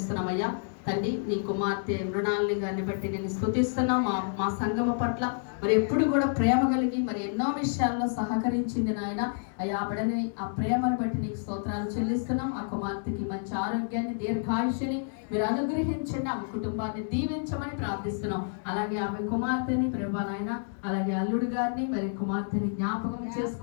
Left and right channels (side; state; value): right; silent; digital silence